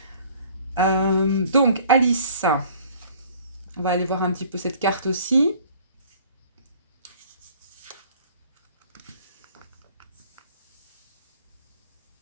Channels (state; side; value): inverted; both; correlation -0.52